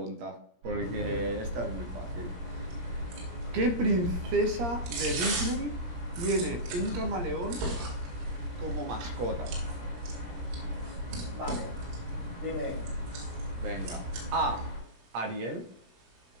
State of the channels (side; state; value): left; late; 17 ms